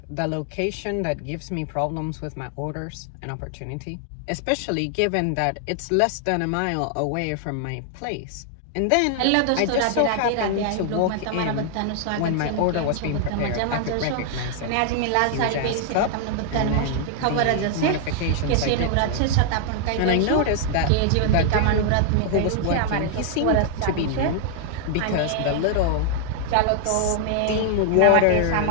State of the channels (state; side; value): different; both; correlation 0.00